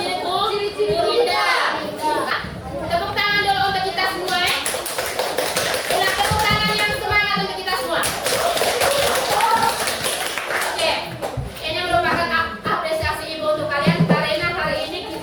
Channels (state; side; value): identical; both; correlation 1.00